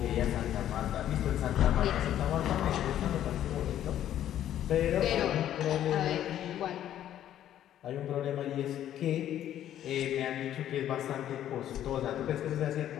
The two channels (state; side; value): quieter; right; 11.4 dB